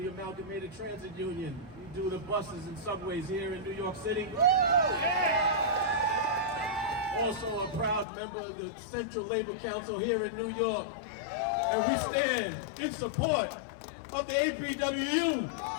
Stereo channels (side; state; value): right; drops out; at 8.1 s